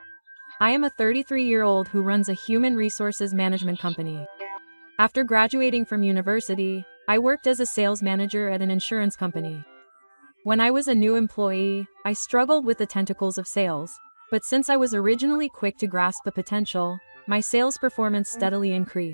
I am a 33-year-old who runs a human resources management company. After graduating from university, I worked as a sales manager at an insurance company. When I was a new employee, I struggled with the tentacles of sales, but since I was originally quick to grasp the potential, my sales performance steadily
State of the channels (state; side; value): inverted; both; correlation -1.00